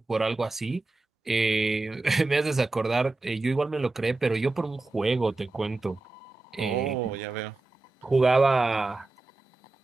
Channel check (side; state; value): left; quieter; 3.3 dB